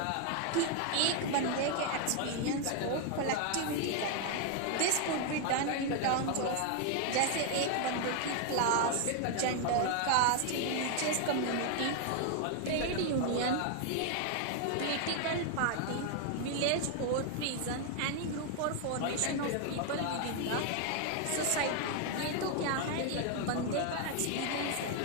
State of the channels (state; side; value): different; both; correlation 0.00